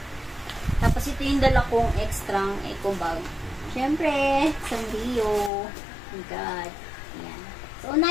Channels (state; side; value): drops out; right; at 5.5 s